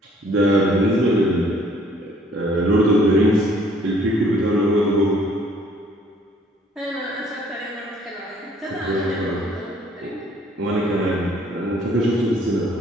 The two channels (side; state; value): both; normal; correlation 0.60